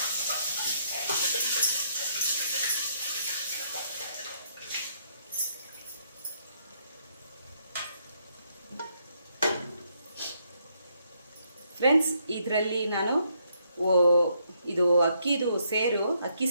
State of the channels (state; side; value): inverted; both; correlation -0.73